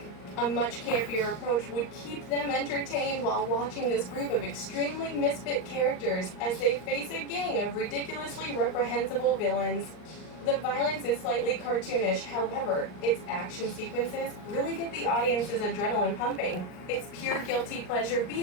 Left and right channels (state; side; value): late; right; 39 ms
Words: A much campier approach would keep them entertained while watching this group of extremely misfit characters as they face a gang of ridiculously reprehensible villains. The violence is slightly cartoonish, however, its action sequences really get the audience's adrenaline pumping. It's pure guilty pleasure B